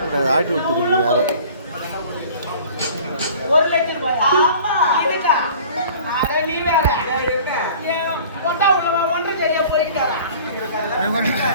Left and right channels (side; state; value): both; inverted; correlation -0.46